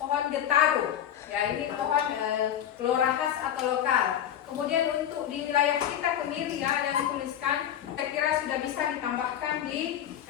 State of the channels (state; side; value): quieter; right; 10.2 dB